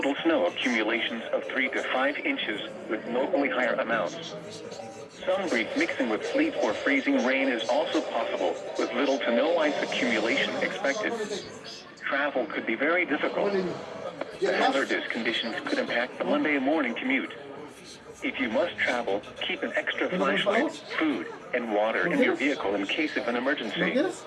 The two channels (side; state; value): both; identical; correlation 1.00